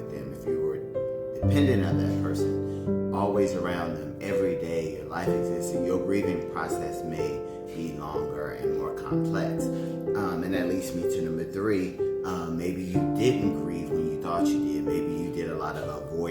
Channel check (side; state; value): both; identical; correlation 1.00